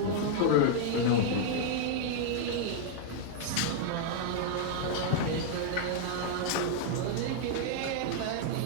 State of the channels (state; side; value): different; both; correlation -0.01